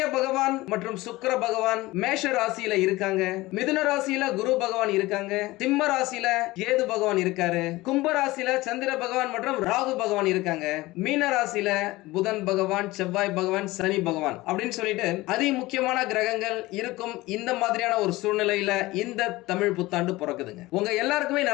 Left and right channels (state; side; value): quieter; right; 19.6 dB